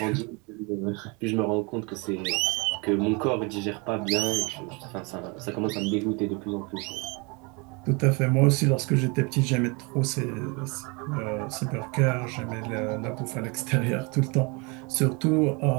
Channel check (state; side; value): quieter; left; 30.0 dB